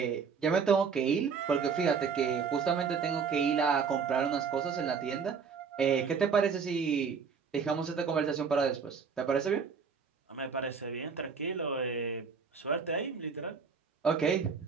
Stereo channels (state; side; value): quieter; left; 5.9 dB